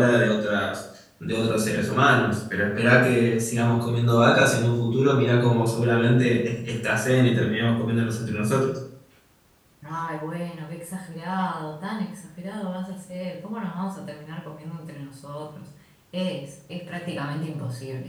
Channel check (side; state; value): both; identical; correlation 1.00